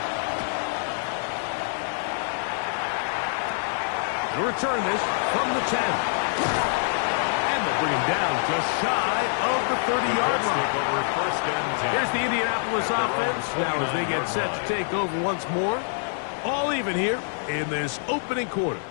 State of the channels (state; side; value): silent; right; 61 dB below the other